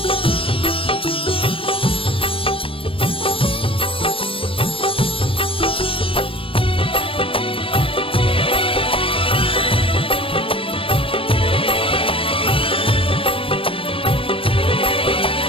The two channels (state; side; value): late; right; 0.26 ms